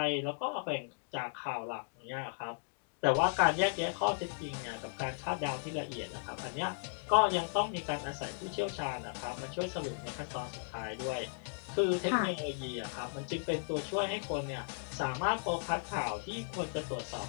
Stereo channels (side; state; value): right; silent; digital silence